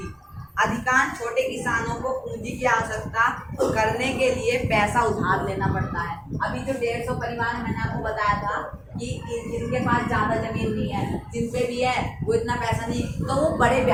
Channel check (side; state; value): both; identical; correlation 1.00